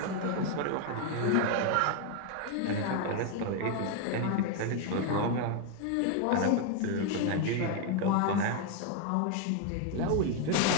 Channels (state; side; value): different; both; correlation 0.01